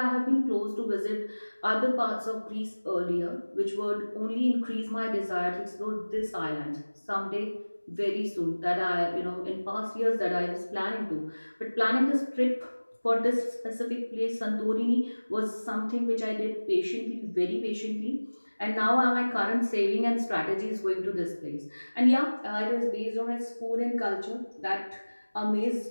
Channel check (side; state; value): both; inverted; correlation -1.00